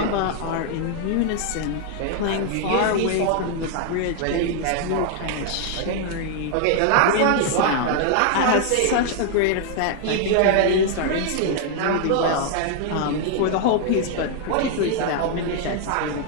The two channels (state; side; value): different; both; correlation 0.00